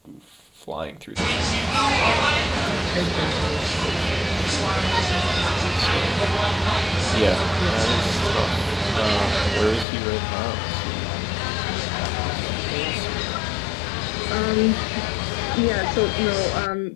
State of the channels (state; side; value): drops out; right; at 9.9 s